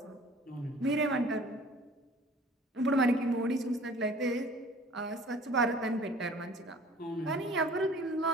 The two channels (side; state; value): both; normal; correlation 0.49